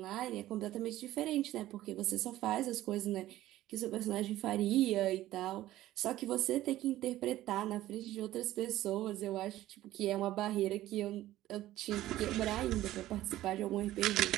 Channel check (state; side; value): quieter; left; 14.9 dB